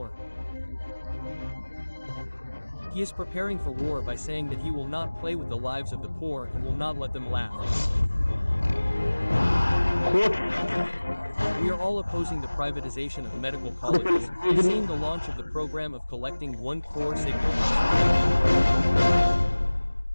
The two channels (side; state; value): both; inverted; correlation -1.00